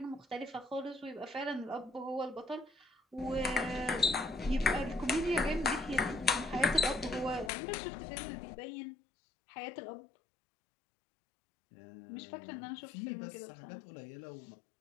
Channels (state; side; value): drops out; right; at 7.5 s